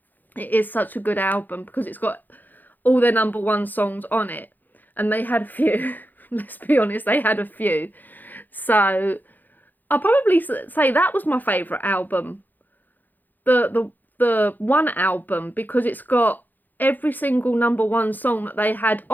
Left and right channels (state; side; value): late; right; 0.086 ms